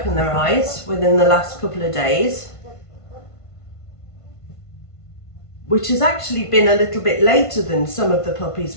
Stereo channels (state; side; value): late; right; 1.5 ms